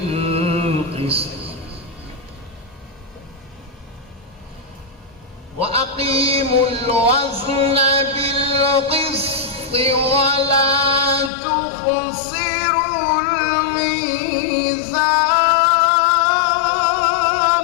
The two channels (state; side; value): drops out; right; at 11.3 s